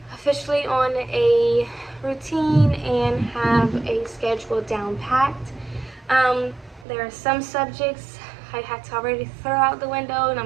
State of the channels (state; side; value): drops out; left; at 6.9 s